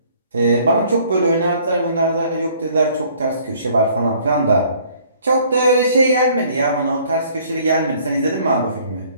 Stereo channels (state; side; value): inverted; both; correlation -0.58